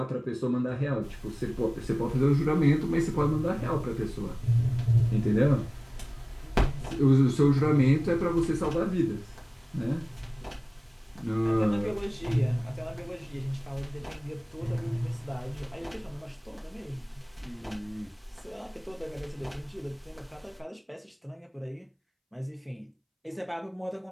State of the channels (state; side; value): identical; both; correlation 1.00